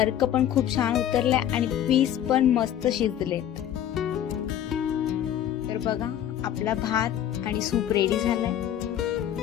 पण खूप छान उतरलाय आणि पीस पण मस्त शिजलेत। तर बघा, आपला भात आणि सूप रेडी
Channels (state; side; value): quieter; right; 10.8 dB